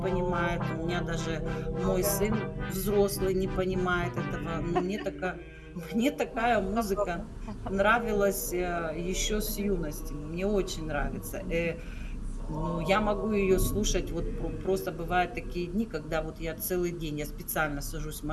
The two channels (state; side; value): identical; both; correlation 1.00